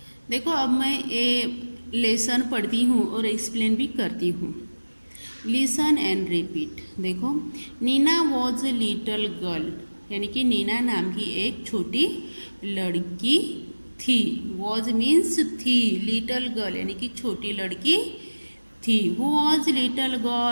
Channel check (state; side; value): inverted; both; correlation -1.00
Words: देखो, अब मैं ये लेसन पढ़ती हूँ और एक्सप्लेन भी करती हूँ। Listen and repeat. देखो, Neena was a little girl, यानी कि नीना नाम की एक छोटी लड़की थी। वॉज मीन्स थी, लिटल गर्ल यानी कि छोटी लड़की थी। Who was little